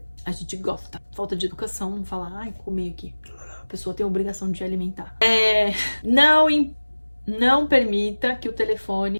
A gente gosta. Falta de educação, não falar, comi aqui. A pessoa tem a obrigação de alimentar. Não permita que o telefone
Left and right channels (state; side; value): inverted; both; correlation -1.00